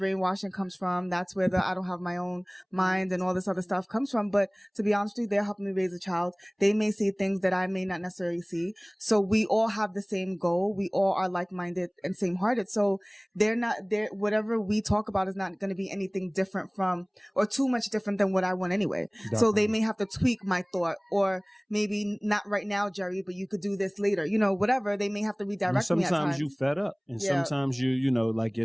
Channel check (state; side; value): identical; both; correlation 1.00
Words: comes from. That's where the I don't have my own mind and all this other stuff comes from. But to be honest with you, they're helping me raise a child. They may see things that I may not necessarily see. So we all have the same goal. We all are like-minded and same-hearted. So whatever we talk about is not going to be anything different from or too much different than what I want anyway. Definitely. So they may have to tweak my thought, or maybe not right now, Jerri, but you could do this later. You know, whatever. They may have to redirect me at times. Sometimes you fed up, and sometimes you know, like